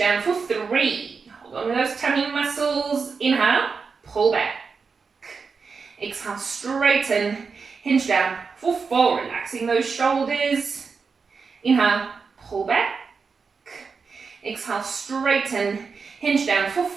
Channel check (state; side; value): quieter; left; 5.1 dB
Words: for 3. Hold on with those tummy muscles. Inhale, pull back. Exhale, straighten, hinge down for 4. Relaxing those shoulders. Inhale, pull back. Exhale, straighten, hinge down for